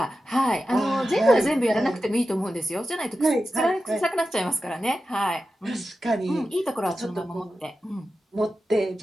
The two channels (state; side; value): normal; both; correlation 0.92